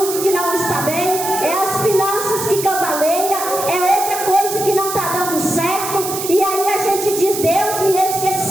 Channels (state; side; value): noise; right; hiss, 6 dB below the sound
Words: que não está bem, é as finanças que cambaleia, é outra coisa que não está dando certo. E aí a gente diz: Deus me